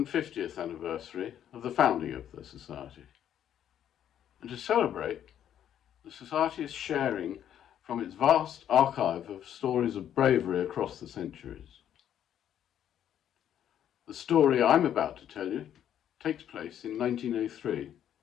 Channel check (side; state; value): right; quieter; 10.2 dB